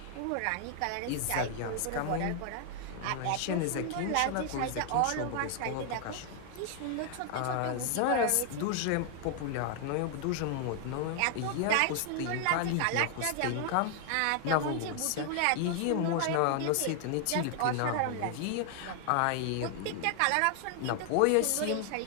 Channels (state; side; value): different; both; correlation 0.00